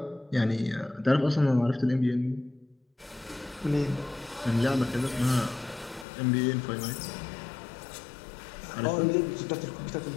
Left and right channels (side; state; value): right; drops out; at 6.1 s